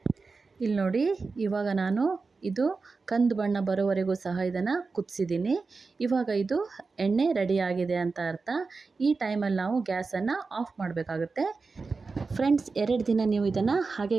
ಇಲ್ಲಿ ನೋಡಿ, ಇವಾಗ ನಾನು ಇದು ಕಂದು ಬಣ್ಣ ಬರೋವರೆಗೂ ಸಹ ಇದನ್ನು ಕುದಿಸಿದ್ದೀನಿ. ಇವಾಗ ಇದು ಎಣ್ಣೆ ರೆಡಿಯಾಗಿದೆ ಅಂತ ಅರ್ಥ. ಈ ಟೈಮಲ್ಲಿ ನಾವು ಗ್ಯಾಸನ್ನು ಆಫ್ ಮಾಡಬೇಕಾಗುತ್ತೆ. ಫ್ರೆಂಡ್ಸ್, 2 ದಿನ ನೀವು ಇದನ್ನು ಹಾಗೆ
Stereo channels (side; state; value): left; quieter; 4.3 dB